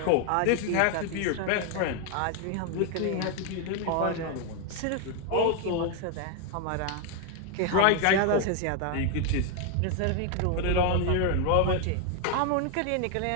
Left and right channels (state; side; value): different; both; correlation 0.01